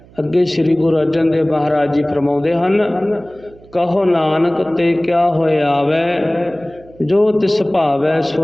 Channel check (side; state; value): right; noise; hum, 25 dB below the sound